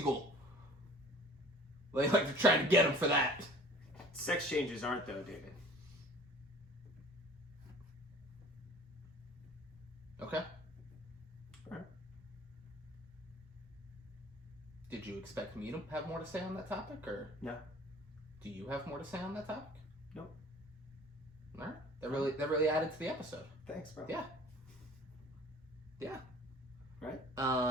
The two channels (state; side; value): normal; both; correlation 0.47